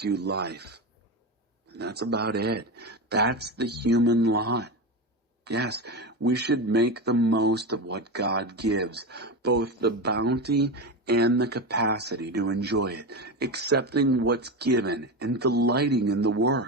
you life. And that's about it. That's the human lot. Yes, we should make the most of what God gives, both the bounty and the capacity to enjoy it, accepting what's given and delighting in the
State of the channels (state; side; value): normal; both; correlation 0.19